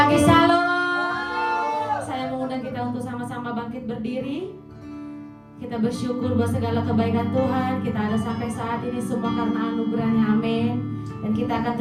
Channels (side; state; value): both; identical; correlation 1.00